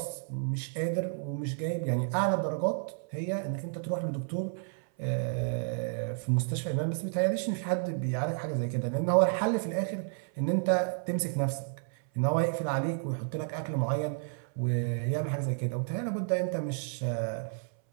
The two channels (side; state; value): left; silent; 57 dB below the other